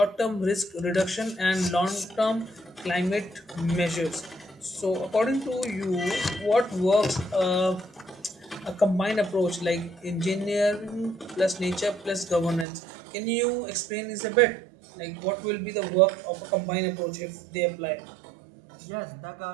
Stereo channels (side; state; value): left; drops out; at 12.7 s